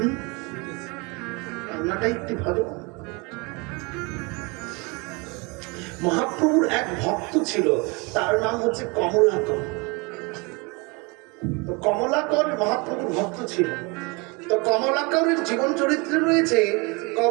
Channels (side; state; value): left; quieter; 28.6 dB